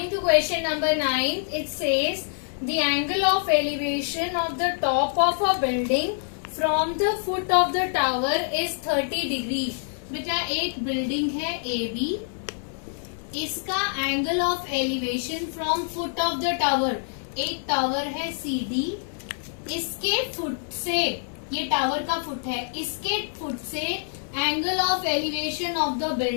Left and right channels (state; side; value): silent; right; 60 dB below the other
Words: to question number 9, it says the angle of elevation of the top of a building from the foot of the tower is 30 degree. बेटा एक building है AB, इसका angle of elevation from foot of the tower, एक tower है CD, इसके से, ये tower का फुट है, इसके फुट से angle of elevation of the